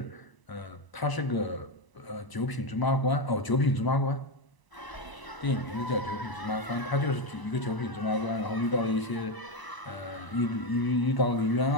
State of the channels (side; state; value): right; late; 1.0 ms